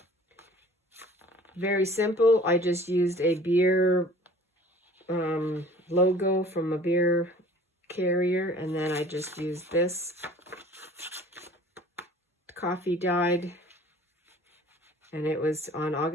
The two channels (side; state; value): both; normal; correlation 0.48